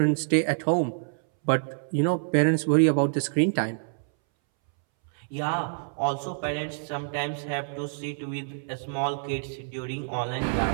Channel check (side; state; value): left; silent; 60 dB below the other